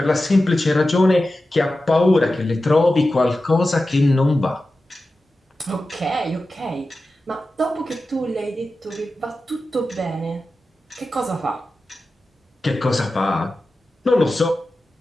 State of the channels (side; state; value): both; normal; correlation 0.93